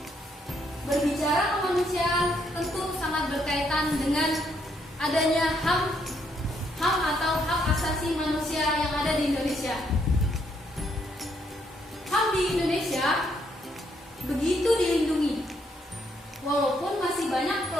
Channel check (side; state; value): both; normal; correlation 0.73